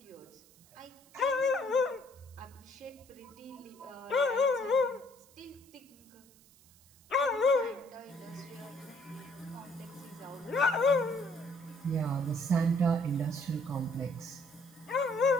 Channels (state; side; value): noise; right; hiss, 27 dB below the sound